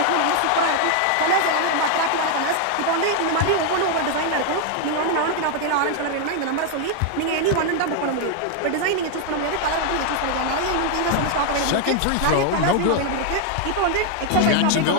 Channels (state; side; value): different; both; correlation 0.00